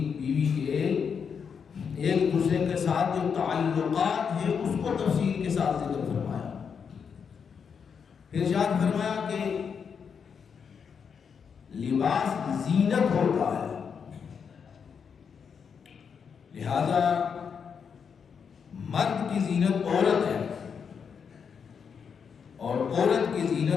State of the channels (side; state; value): right; quieter; 6.6 dB